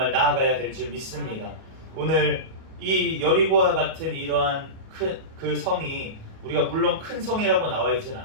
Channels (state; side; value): late; left; 38 ms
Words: 나아가야 될 줄 믿습니다. 오늘 이 여리고와 같은 이러한 그 성이 우리가 물론 큰 성이라고 나와 있진